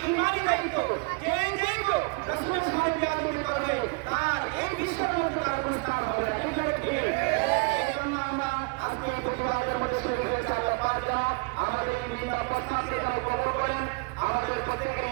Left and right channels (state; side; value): quieter; left; 30.7 dB